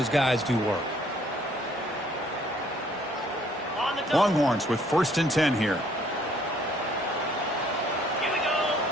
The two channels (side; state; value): both; normal; correlation 0.62